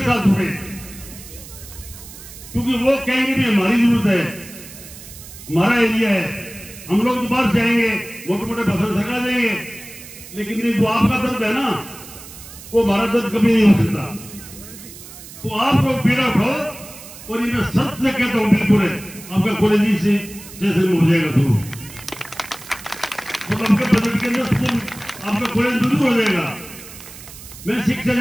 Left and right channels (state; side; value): noise; right; hiss, 16 dB below the sound